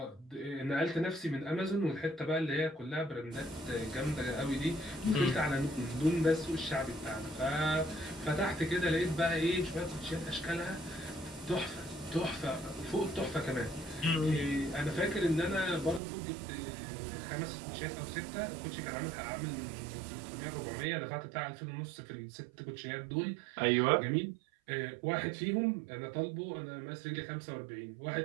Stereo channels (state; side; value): drops out; left; at 16.0 s